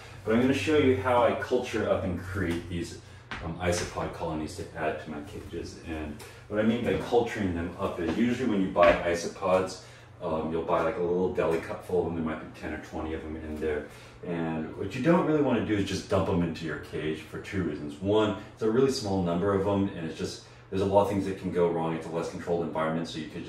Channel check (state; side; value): identical; both; correlation 1.00